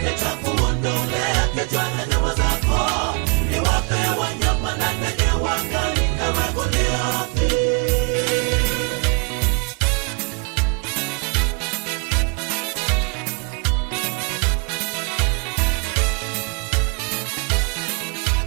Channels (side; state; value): left; quieter; 34.6 dB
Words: Nitakuondolea kichwa na nyama zako, niwape wanyama na ndege wa angani, ewe Goliathi.